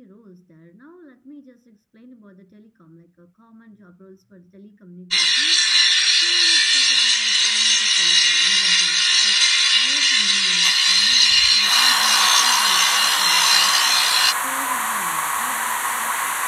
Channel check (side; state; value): both; identical; correlation 1.00